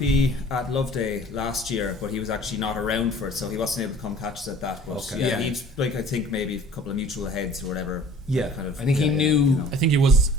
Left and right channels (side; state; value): both; normal; correlation 0.47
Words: at Love Day last year, but he was actually not around for it, so he wasn't able to come catch us at that. But he'd like, I think maybe a couple of mutual heads or whatever. Yeah, kind of. I think he knew. I think he was